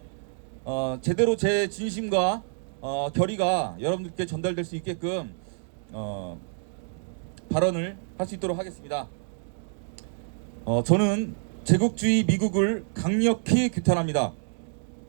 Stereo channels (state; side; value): silent; left; digital silence